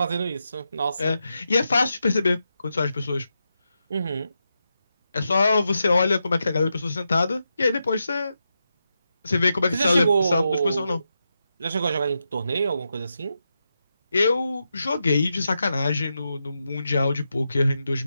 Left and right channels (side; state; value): both; inverted; correlation -0.87